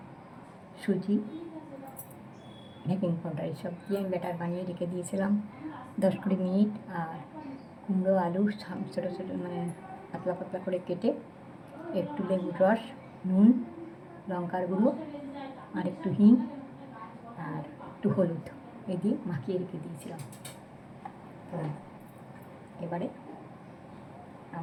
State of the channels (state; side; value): identical; both; correlation 1.00